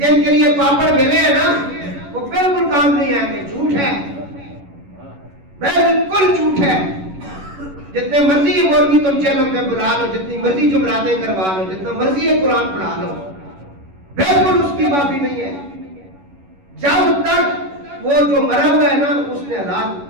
کے لیے پاپڑ ملے ہیں نا وہ بالکل کام نہیں آئیں گے، جھوٹ ہے، بالکل جھوٹ ہے. جتنے مرضی مولوی تم چینل میں بلا لو، جتنی مرضی جمراتیں کروا لو، جتنا مرضی قرآن پڑھا لو، بالکل اس کی معافی نہیں ہے. جب تک وہ جو مرا ہوا ہے نا اس نے حلال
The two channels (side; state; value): left; late; 11 ms